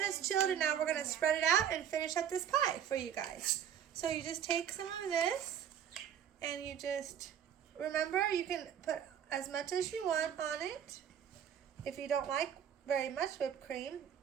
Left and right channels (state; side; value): quieter; left; 9.0 dB